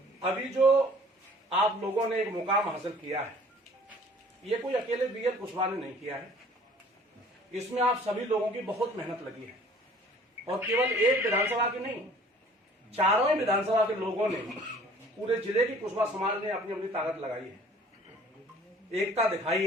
अभी जो आप लोगों ने एक मुकाम हासिल किया है, ये कोई अकेले बीएल कुशवाहा ने नहीं किया है। इसमें आप सभी लोगों की बहुत मेहनत लगी है, और केवल एक विधानसभा की नहीं, चारों ही विधानसभा के लोगों ने, पूरे जिले की कुशवाहा समाज ने अपनी अपनी ताकत लगाई है, एकता दिखाई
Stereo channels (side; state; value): both; normal; correlation 0.52